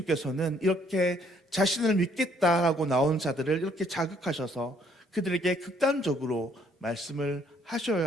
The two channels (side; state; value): both; normal; correlation 0.65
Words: 이렇게 자신을 믿겠다라고 나온 자들을 이렇게 자극하셔서 그들에게 극단적으로 말씀을